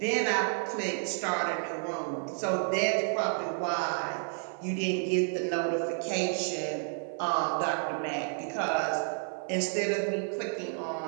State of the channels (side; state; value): left; silent; 57 dB below the other